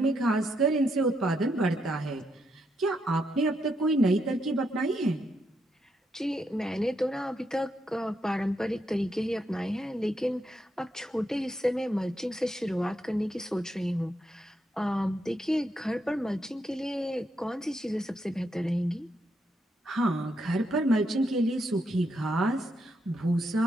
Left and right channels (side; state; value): both; normal; correlation 0.79